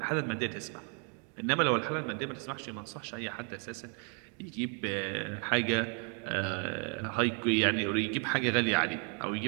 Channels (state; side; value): quieter; left; 39.5 dB